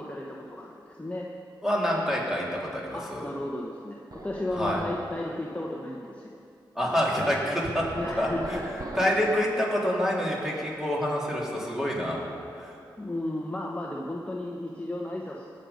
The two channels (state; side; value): normal; both; correlation 0.81